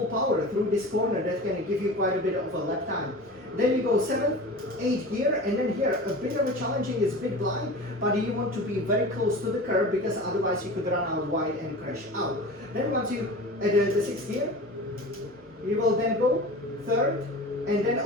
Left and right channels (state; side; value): normal; both; correlation 0.35